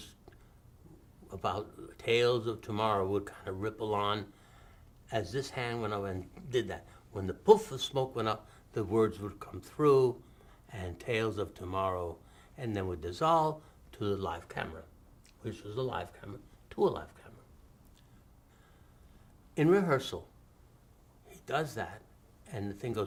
about tales of tomorrow would kind of ripple on, as this hand went up and did that. When the poof of smoke went up, the words would come through, and tales of tomorrow, and then would dissolve to the live camera, which was a live camera, to a live camera. In rehearsal, he does that, and the thing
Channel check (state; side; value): identical; both; correlation 1.00